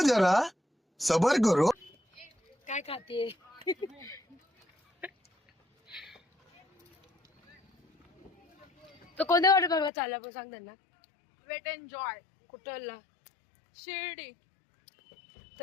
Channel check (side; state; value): right; drops out; at 9.9 s